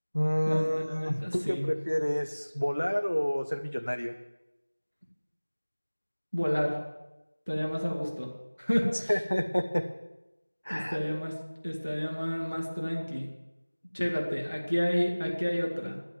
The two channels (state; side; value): inverted; both; correlation -1.00